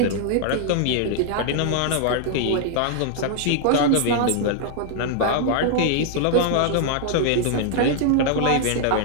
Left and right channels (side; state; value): both; different; correlation 0.00